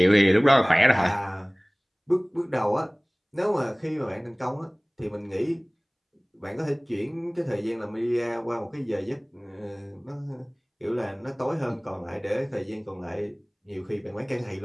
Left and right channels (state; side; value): identical; both; correlation 1.00